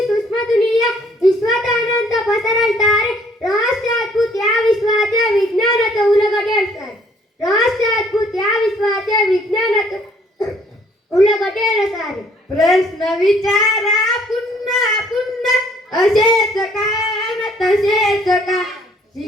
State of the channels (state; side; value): normal; both; correlation 0.62